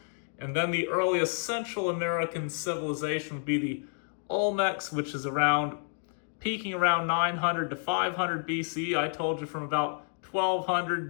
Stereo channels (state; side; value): silent; right; 57 dB below the other